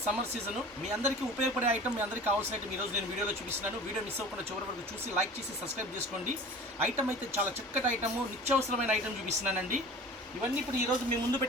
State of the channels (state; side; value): normal; both; correlation 0.40